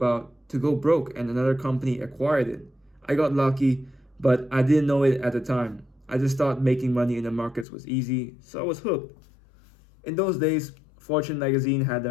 to go broke and another company acquired it. I got lucky, but I didn't know it at the time. I just thought making money in the markets was easy, so I was hooked. In those days, Fortune magazine had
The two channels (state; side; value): drops out; right; at 7.7 s